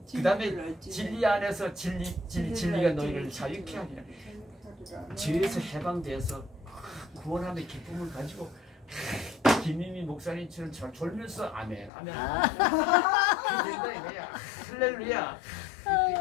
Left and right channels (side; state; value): right; drops out; at 11.9 s